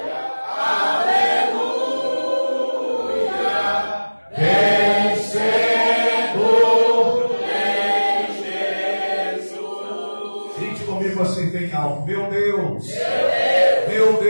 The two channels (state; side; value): inverted; both; correlation -1.00